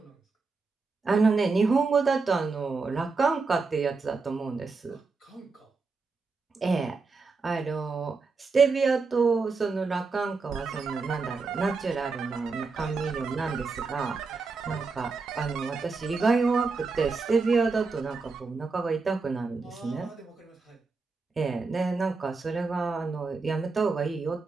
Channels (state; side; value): quieter; left; 4.3 dB